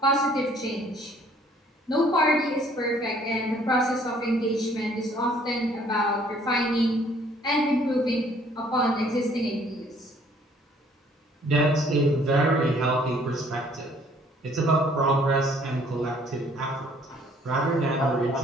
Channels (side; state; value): both; normal; correlation 0.60